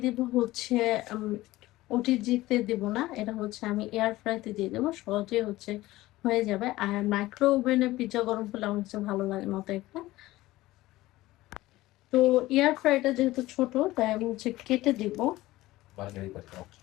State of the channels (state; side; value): quieter; right; 17.6 dB